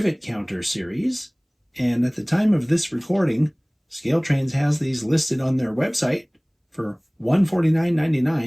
Counter series, and at the time of this recording, ScaleTrains has these listed on their website for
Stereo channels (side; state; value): both; identical; correlation 1.00